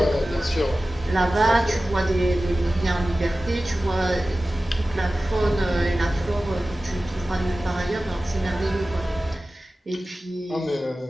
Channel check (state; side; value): normal; both; correlation 0.96